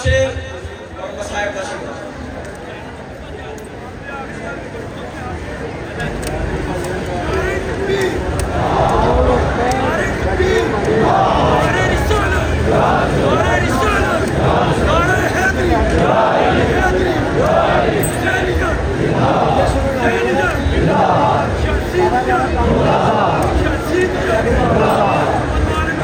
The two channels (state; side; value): identical; both; correlation 1.00